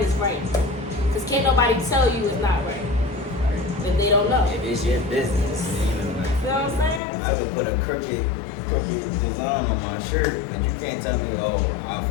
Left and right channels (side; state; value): right; drops out; at 7.0 s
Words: right. Because can't nobody tell you it's not right if they don't know. If it's your business, You know what I'm saying? I could put a crooked design on my shirt, but you can't tell me, oh, I